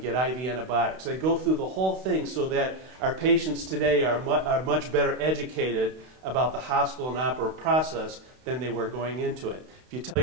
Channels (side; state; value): left; late; 32 ms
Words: IV antibiotics. They go through the whole thing so that our patients today are much better educated about the hospital and operative process than they were going into it. If you tell